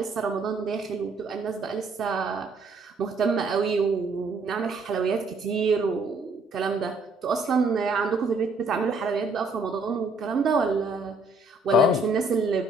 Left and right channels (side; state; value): left; quieter; 3.0 dB